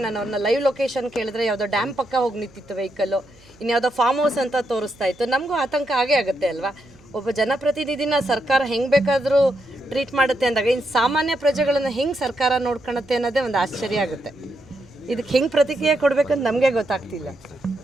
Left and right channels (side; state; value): right; noise; hum, 27 dB below the sound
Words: ನಾನು ಅವ್ರನ್ನ ಲೈವ್ ಲೊಕೇಶನ್ ಕೇಳಿದ್ರೆ ಯಾವುದೋ ಡ್ಯಾಮ್ ಪಕ್ಕ ಹೋಗಿ ನಿಂತಿತ್ತು ವೆಹಿಕಲ್ಲು, ಇನ್ಯಾವುದೋ ಫಾರ್ಮ್ ಹೌಸ್ ಅಂತ ತೋರಿಸ್ತಾ ಇತ್ತು. ನಮಗೂ ಆತಂಕ ಆಗೇ ಆಗುತ್ತೆ ಅಲ್ವಾ? ಒಬ್ಬ ಜನಪ್ರತಿನಿಧಿನ ಸರ್ಕಾರ ಹೆಂಗೆ ಬೇಕಾದರೂ ಟ್ರೀಟ್ ಮಾಡುತ್ತೆ ಅಂದಾಗ ಇನ್ನು ಸಾಮಾನ್ಯ ಪ್ರಜೆಗಳನ್ನು ಹೆಂಗೆ ಸರ್ಕಾರ ನೋಡ್ಕೊಳುತ್ತೆ ಅನ್ನೋದೇ ಒಂದು ಆಶ್ಚರ್ಯ ಆಗುತ್ತೆ. ಇದಕ್ಕೆ ಹೆಂಗೆ ಪ್ರತಿಕ್ರಿಯೆ ಕೊಡಬೇಕಂತ ನಮಗೆ ಗೊತ್ತಾಗ್ತಿಲ್ಲ.